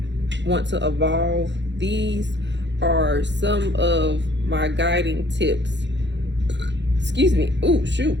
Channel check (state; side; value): late; left; 0.52 ms